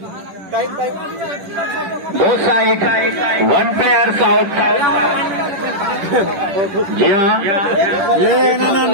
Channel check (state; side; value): late; left; 10 ms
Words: दो साइड 1 प्लेयर्स आउट। जी हाँ